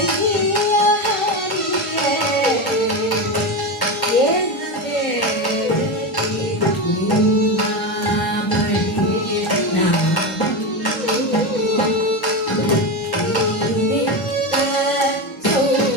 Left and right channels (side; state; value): both; normal; correlation 0.17